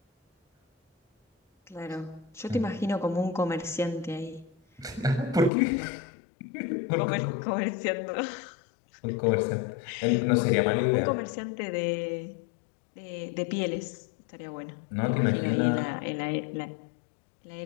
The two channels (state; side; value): drops out; right; at 5.5 s